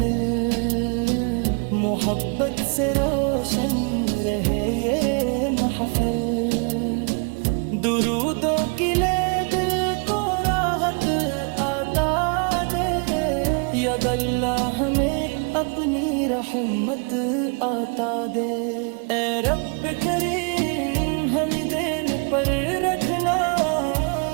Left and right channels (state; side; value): quieter; left; 37.7 dB